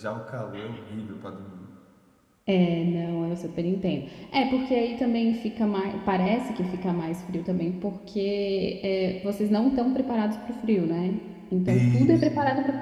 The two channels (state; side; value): identical; both; correlation 1.00